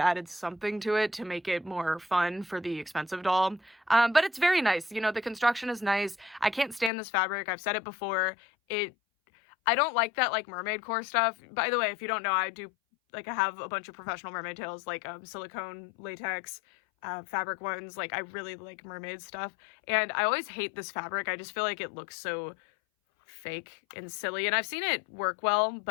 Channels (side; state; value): right; drops out; at 6.9 s